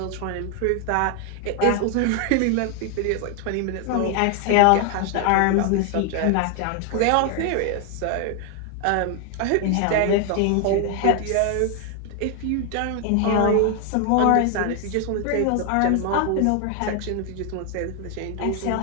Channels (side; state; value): both; different; correlation 0.00